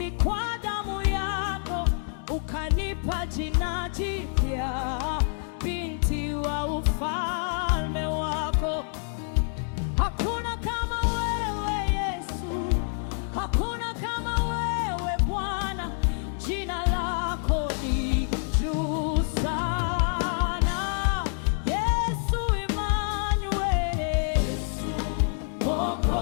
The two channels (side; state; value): right; silent; digital silence